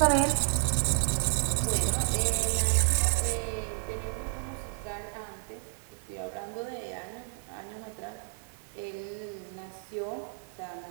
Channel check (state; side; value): silent; left; 57 dB below the other